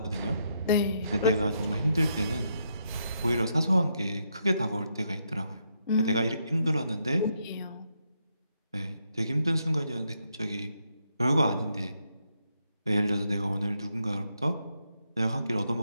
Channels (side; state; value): both; inverted; correlation -0.78